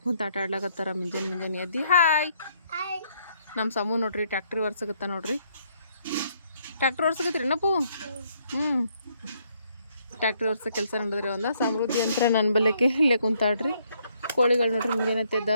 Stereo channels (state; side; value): inverted; both; correlation -0.70